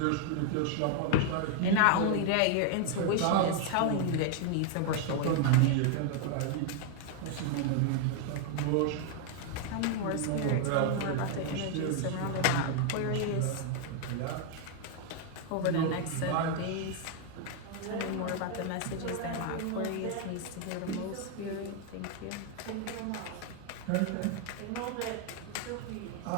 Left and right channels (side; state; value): both; different; correlation 0.00